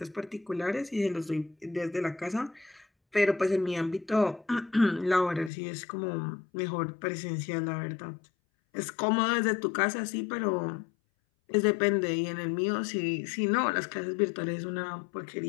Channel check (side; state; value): right; drops out; at 5.5 s